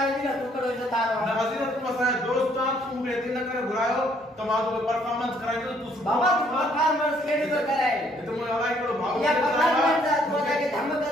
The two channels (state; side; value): normal; both; correlation 0.65